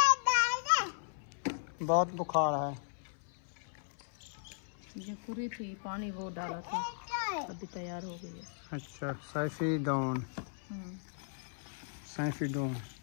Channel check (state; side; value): silent; right; 53 dB below the other